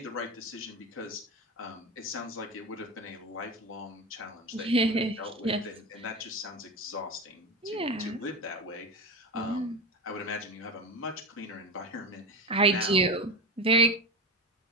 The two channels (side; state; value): both; normal; correlation 0.21